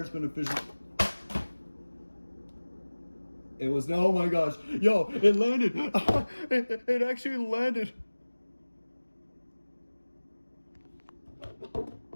is beneficial. It was no, oh my gosh, yo, it landed. It actually landed.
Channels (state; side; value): inverted; both; correlation -1.00